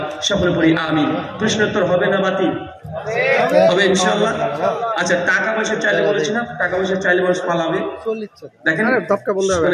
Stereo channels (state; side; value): identical; both; correlation 1.00